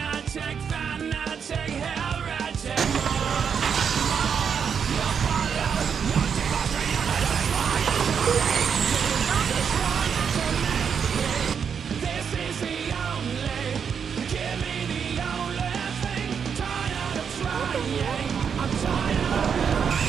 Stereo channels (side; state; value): left; quieter; 7.0 dB